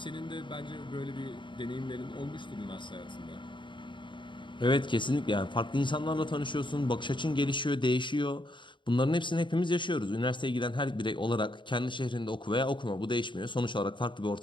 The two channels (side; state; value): right; late; 0.23 ms